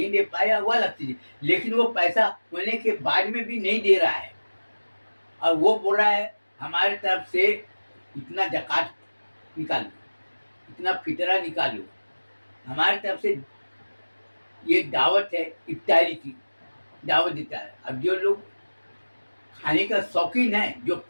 दे पाया, वो अलग चीज है। लेकिन वो पैसा होने के बाद में भी नहीं दे रहा है और वो बोल रहा है हमारे तरफ से इतना ज़कात निकालो, इतना फितरा निकालो, हमारे तरफ से ये दावत है, इफ्तारी की दावत देता है। अब जो लोग खाने का शौकीन है, जो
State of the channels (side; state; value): both; inverted; correlation -1.00